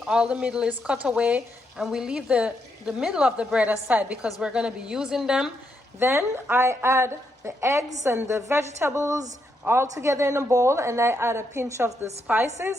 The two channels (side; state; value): both; normal; correlation 0.79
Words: all the middle is cut away, and we leave the middle of the bread aside because we're going to be using them. Then I add the eggs and the vegetables all together in a bowl, and I add a pinch of the